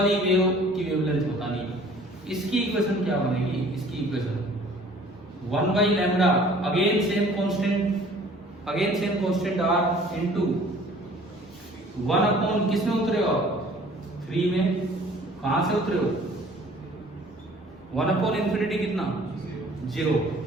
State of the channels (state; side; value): normal; both; correlation 0.52